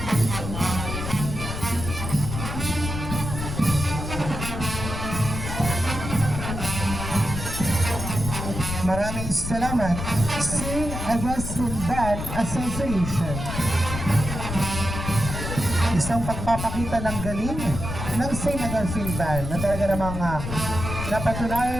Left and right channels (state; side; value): noise; left; rumble, 5 dB below the sound